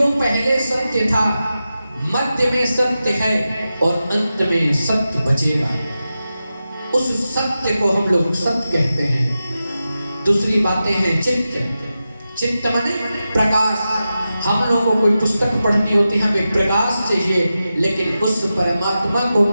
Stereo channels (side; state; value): both; inverted; correlation -0.92